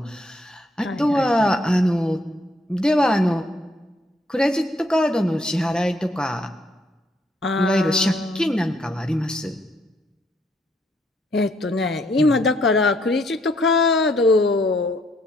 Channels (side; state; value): both; normal; correlation 0.70